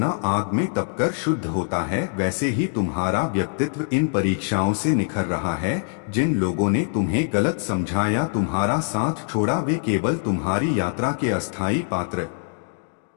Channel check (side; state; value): right; silent; digital silence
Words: आग में तपकर शुद्ध होता है, वैसे ही तुम्हारा व्यक्तित्व इन परीक्षाओं से निखर रहा है। जिन लोगों ने तुम्हें गलत समझा या तुम्हारा साथ छोड़ा वे केवल तुम्हारी यात्रा के अस्थायी पात्र